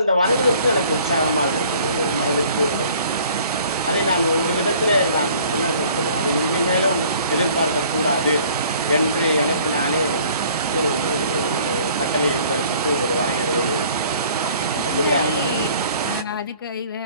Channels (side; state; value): both; inverted; correlation -0.53